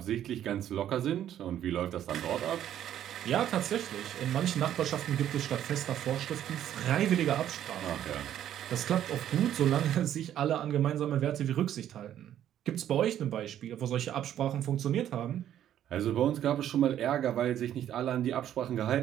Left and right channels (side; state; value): left; quieter; 11.0 dB